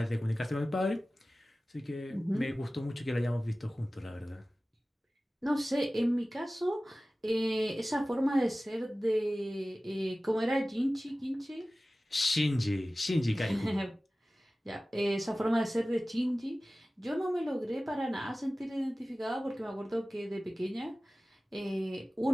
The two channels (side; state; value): both; normal; correlation 0.97